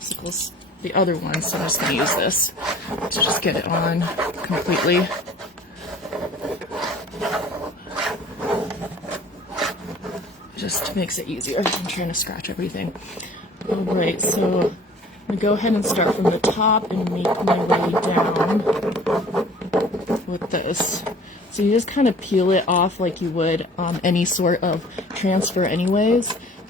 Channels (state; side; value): normal; both; correlation 0.49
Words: the other one, so I'm just going to use this to just get it on completely. Just makes it easier. I'm trying to scratch everything. Alright, so I'm going to go ahead and start from the top and make my way down with this. So you just kind of peel it off like you would any sort of transfer anyways,